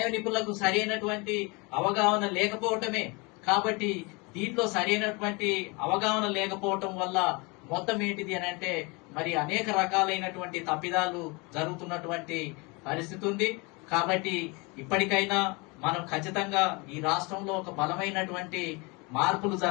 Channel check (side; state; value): right; quieter; 28.1 dB